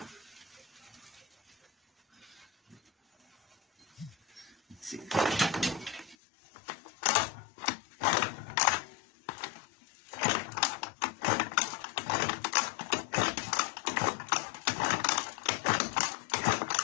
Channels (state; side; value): drops out; right; at 6.2 s